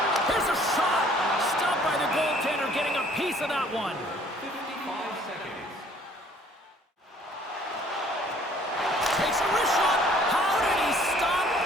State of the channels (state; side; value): normal; both; correlation 0.57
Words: Here's a shot! Stopped by the goaltender, getting a piece of that one. 55 seconds. Takes a wrist shot. How did he stop